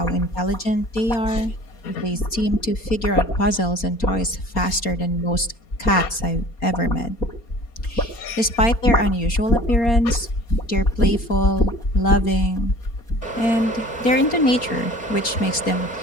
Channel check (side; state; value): right; late; 4.3 ms